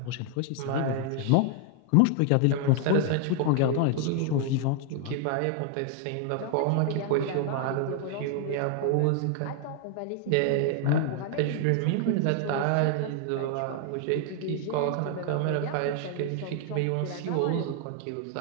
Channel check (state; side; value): different; both; correlation 0.00